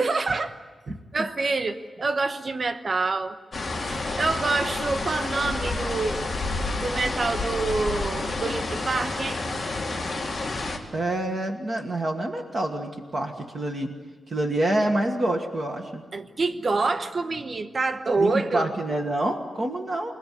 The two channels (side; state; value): both; normal; correlation 0.89